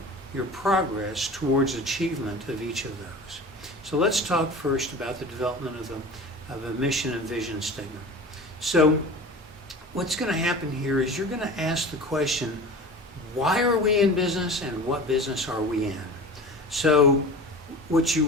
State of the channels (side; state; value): both; normal; correlation 0.36